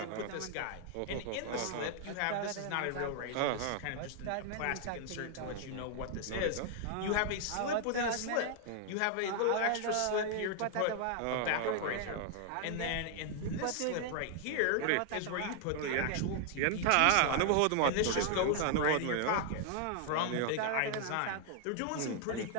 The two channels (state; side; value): different; both; correlation 0.00